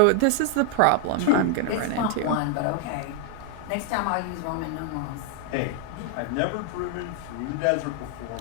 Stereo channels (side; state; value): both; different; correlation 0.00